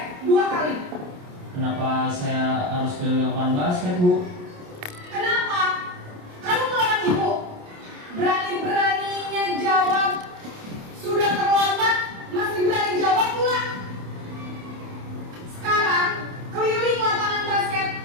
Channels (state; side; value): late; left; 28 ms